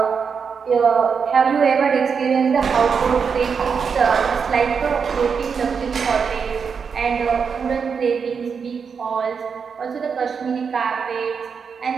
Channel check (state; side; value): quieter; left; 6.1 dB